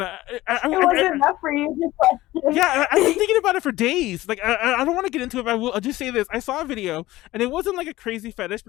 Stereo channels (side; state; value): right; quieter; 17.1 dB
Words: wasn't enough for you. Yeah, I've been thinking about it for days. Like, I don't want to get into it, but I'll just say this. I saw a video, and it wasn't like a crazy fetish,